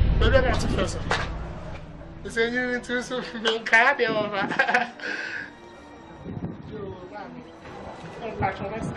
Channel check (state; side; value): identical; both; correlation 1.00